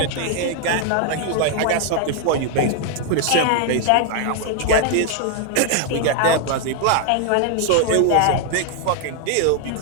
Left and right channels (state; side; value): different; both; correlation 0.00